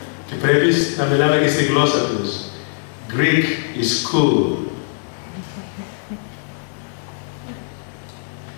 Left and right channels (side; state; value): right; silent; digital silence